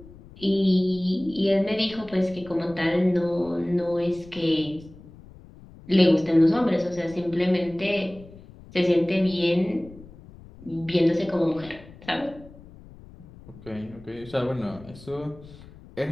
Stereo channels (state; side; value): noise; left; rumble, 20 dB below the sound